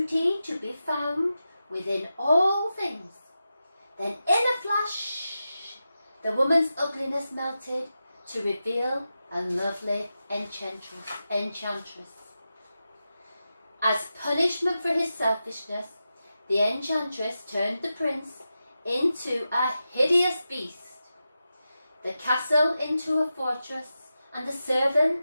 to be found within all things." Then in a flash, the woman's ugliness melted to reveal a lovely enchantress. As punishment for his selfishness, the enchantress turned the prince into a hideous beast, the castle into a fortress, and the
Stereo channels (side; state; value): both; inverted; correlation -0.91